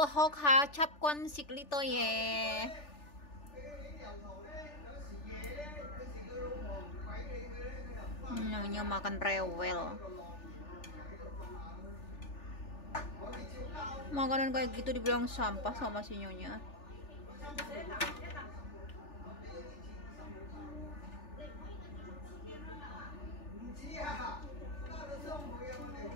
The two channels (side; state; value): right; late; 3.4 ms